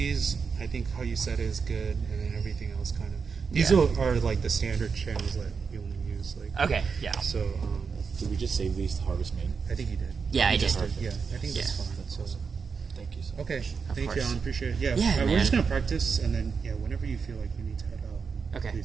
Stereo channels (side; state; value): left; quieter; 5.6 dB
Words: I think how you said is good, and then everything else kind of these Yeah. are like the standard channels that we only use. Like Okay. Yeah. so, Did we just save these to Harvest Main? I think you did. Yeah, I did. Yeah, I think that's Yeah. fine. So Thank you so much. okay, Of thank course. you, Alan. Appreciate it. Yeah, Yeah, we're man. just gonna practice, and then whenever you feel like you need to head out, Okay.